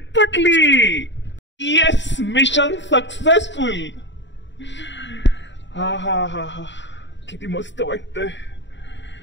पटली. Yes, mission successful. हा हा हा हा, किती मस्त वाटतंय.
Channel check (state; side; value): late; right; 0.53 ms